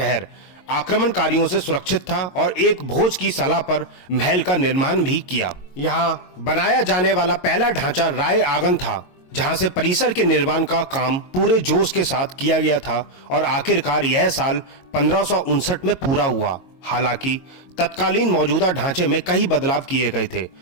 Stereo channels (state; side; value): late; right; 22 ms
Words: आक्रमणकारियों से सुरक्षित था और एक भोज की सलाह पर महल का निर्माण भी किया। यहाँ बनाया जाने वाला पहला ढांचा राय आंगन था जहां से परिसर के निर्माण का काम पूरे जोश के साथ किया गया था और आखिरकार यह साल 1559 में पूरा हुआ। हालांकि तत्कालीन मौजूदा ढांचे में कई बदलाव किए गए थे